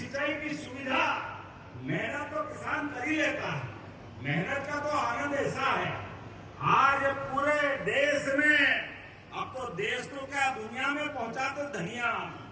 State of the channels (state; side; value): identical; both; correlation 1.00